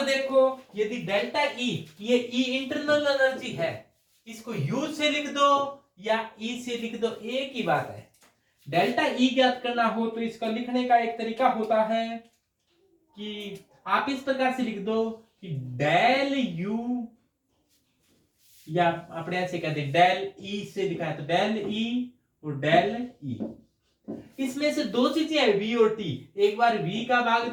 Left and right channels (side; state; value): both; identical; correlation 1.00